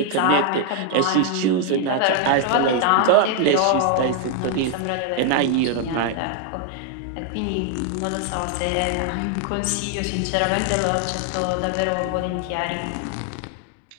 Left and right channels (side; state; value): both; different; correlation 0.00